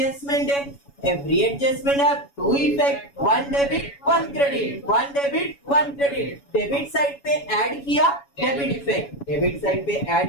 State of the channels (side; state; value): right; late; 7.1 ms